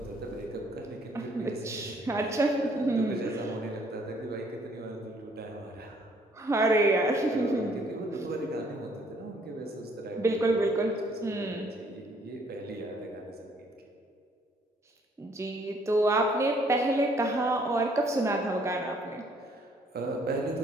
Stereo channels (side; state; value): both; normal; correlation 0.64